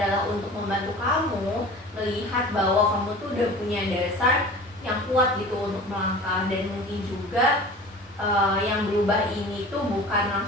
untuk membantu kamu melihat bahwa kamu tuh udah punya dasar yang kuat gitu untuk melangkah. Dan mungkin juga yang berubah ini tuh bukan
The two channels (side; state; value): both; normal; correlation 0.39